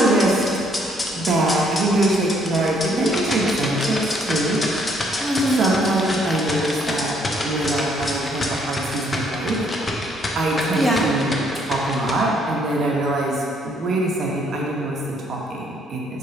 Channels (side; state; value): both; normal; correlation 0.67